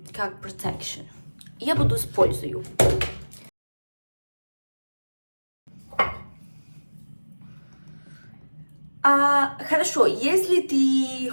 protection. Я буду использую. Хорошо, если ты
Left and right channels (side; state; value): both; inverted; correlation -1.00